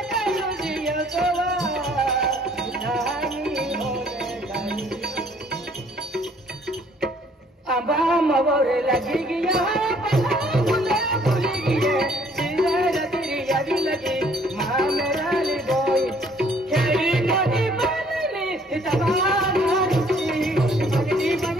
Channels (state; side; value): normal; both; correlation 0.61